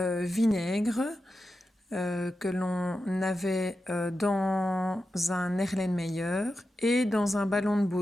vinaigre que l'on avait dans un Erlenmeyer et dans un ballon de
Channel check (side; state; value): both; normal; correlation 0.90